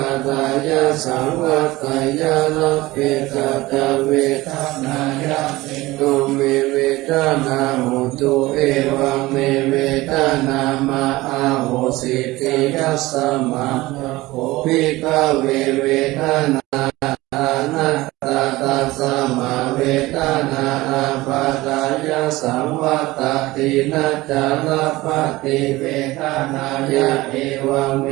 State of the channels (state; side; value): quieter; left; 19.3 dB